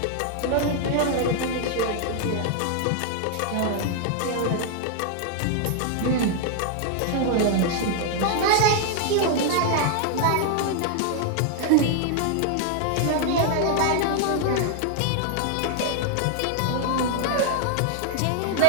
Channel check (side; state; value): both; different; correlation 0.00